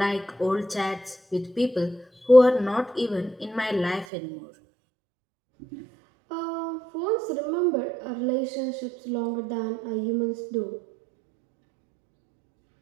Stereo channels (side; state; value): left; drops out; at 4.0 s